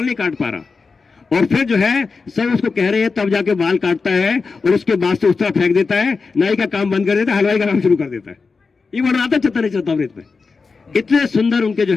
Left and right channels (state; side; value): quieter; right; 4.6 dB